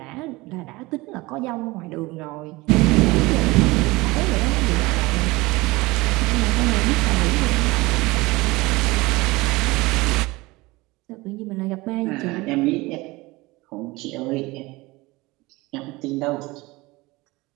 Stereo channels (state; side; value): quieter; left; 21.9 dB